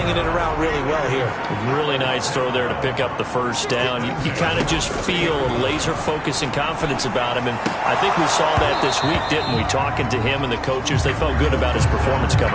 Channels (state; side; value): identical; both; correlation 1.00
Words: it around really well here. Really nice throw there to pick up the first down. You kind of just feel a laser focus and confidence about him, and I think we saw that this week, didn't we? Talking to him and the coaches, they felt good about his performance